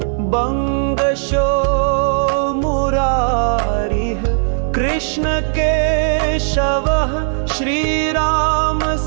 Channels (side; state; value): left; silent; 59 dB below the other